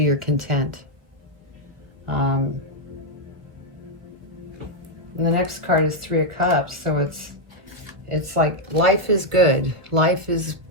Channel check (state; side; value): late; left; 1.4 ms